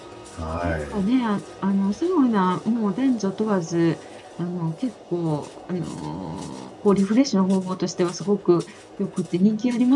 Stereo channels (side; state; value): both; identical; correlation 1.00